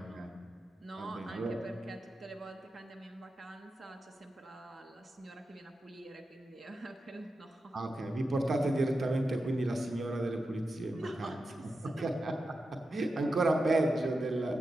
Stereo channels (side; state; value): both; normal; correlation 0.90